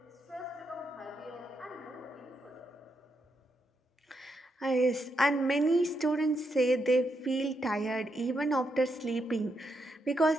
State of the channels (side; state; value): both; normal; correlation 0.81